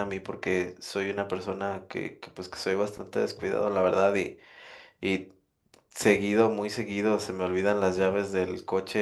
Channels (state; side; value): identical; both; correlation 1.00